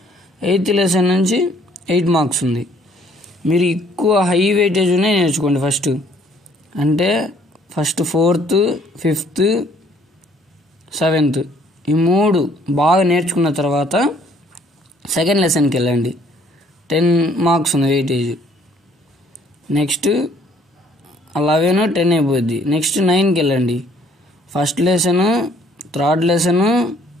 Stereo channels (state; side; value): normal; both; correlation 0.61